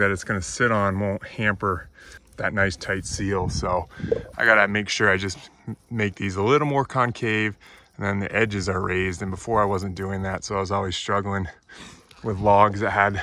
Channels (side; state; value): both; identical; correlation 1.00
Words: it's gonna sit on won't hamper that nice tight seal. So I gotta make sure I just make these a little more concave, and then the edges are raised. And before I wasn't doing that, so I was always struggling with logs that had